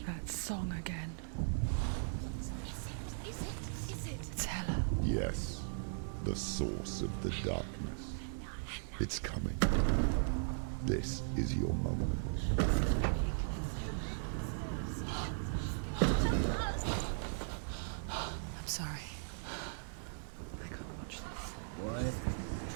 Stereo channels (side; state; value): left; silent; 52 dB below the other